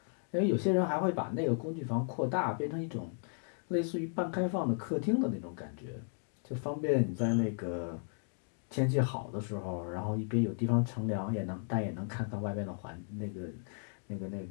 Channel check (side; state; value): right; silent; 55 dB below the other